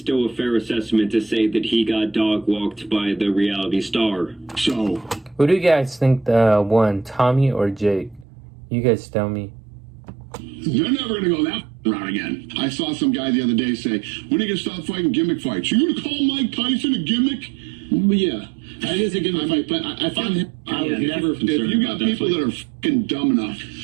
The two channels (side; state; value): left; drops out; at 8.2 s